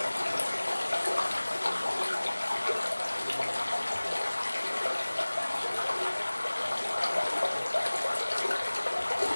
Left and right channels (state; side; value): inverted; both; correlation -1.00